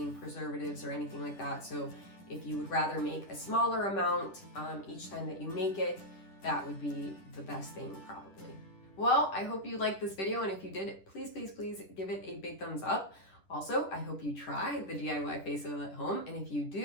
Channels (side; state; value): right; late; 10 ms